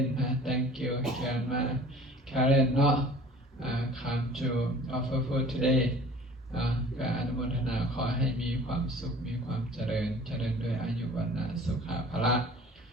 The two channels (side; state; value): both; normal; correlation 0.47